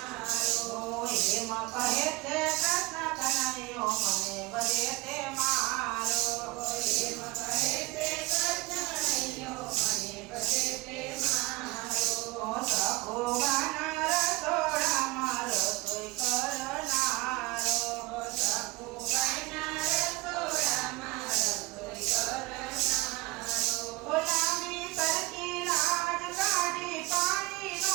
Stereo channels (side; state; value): left; quieter; 23.2 dB